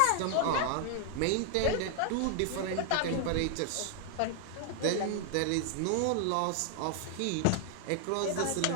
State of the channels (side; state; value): both; different; correlation 0.00